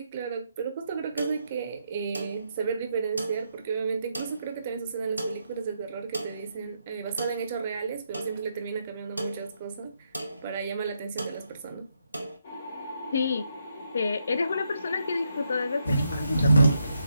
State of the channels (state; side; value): inverted; both; correlation -0.79